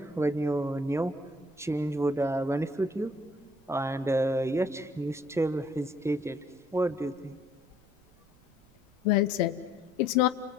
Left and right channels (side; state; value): right; noise; rumble, 29 dB below the sound